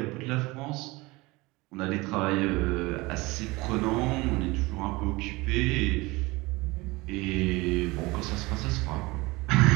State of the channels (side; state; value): left; quieter; 22.6 dB